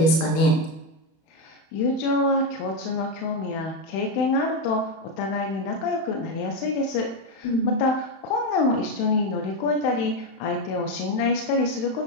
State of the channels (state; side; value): late; right; 31 ms